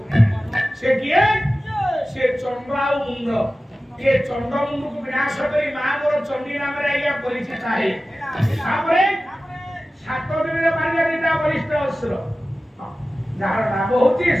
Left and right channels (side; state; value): both; normal; correlation 0.95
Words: ସେ କିଏ ସେ ଚଣ୍ଡ ଆଉ ମୁଣ୍ଡ ଏ ଚଣ୍ଡ ମୁଣ୍ଡକୁ ବିନାଶ କରି ମା ମୋର ଚଣ୍ଡୀ ନାମରେ ଆଜ୍ଞା ପରିଚିତ ହେଲେ ତାପରେ 7 ଦିନରେ ମାରିଲେ ଦିଟା ବରିଷ୍ଠ ଅସୁର ଯାହାର ନାମ ହଉଛି